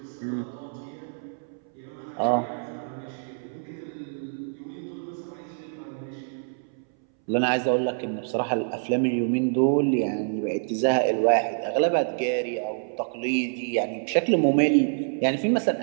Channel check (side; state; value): left; silent; 61 dB below the other